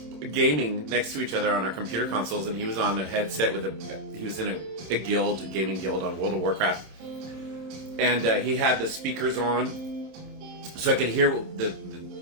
gaming next to each other on our computer consoles, and he was on a headset he was in a gaming guild on World of Warcraft, and he had the speakers on, so I could hear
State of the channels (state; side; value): late; left; 27 ms